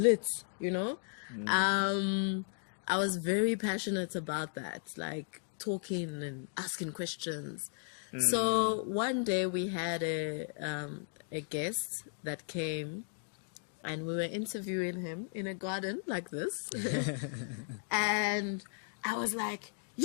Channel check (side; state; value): right; silent; 54 dB below the other